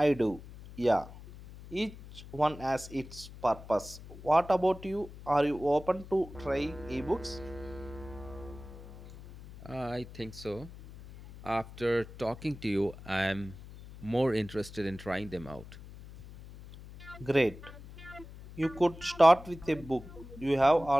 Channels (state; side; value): noise; left; hum, 16 dB below the sound